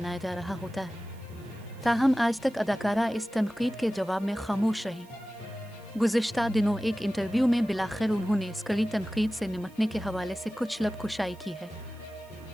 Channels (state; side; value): noise; right; hiss, 27 dB below the sound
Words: जा रहा होता है। ताहम आज तक अदाकारा इस तनकीद के जवाब में खामोश रही। गुज़िश्ता दिनों एक इंटरव्यू में बिलाखिर उन्होंने इस कड़ी तनकीद से निमटने के हवाले से कुछ लबकुशाई की है।